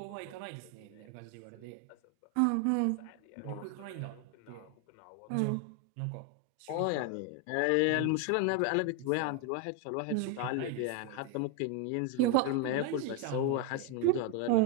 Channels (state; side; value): different; both; correlation 0.01